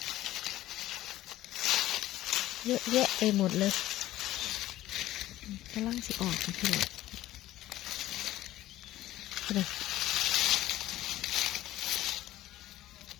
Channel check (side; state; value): right; quieter; 14.9 dB